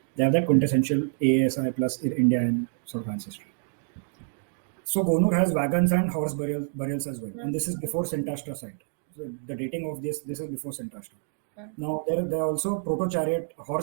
they have that quintessential ASI plus Indian sort of ancestry. So Gonur has wagons and horse burials as well, and this is before Sintashta site. So the dating of this is before Sintashta. Now there are also proto-chariot,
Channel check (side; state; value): left; silent; 60 dB below the other